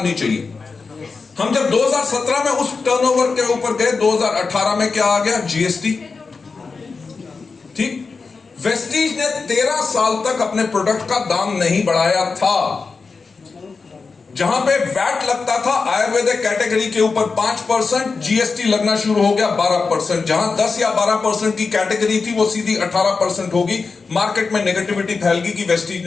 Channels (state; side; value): quieter; right; 4.6 dB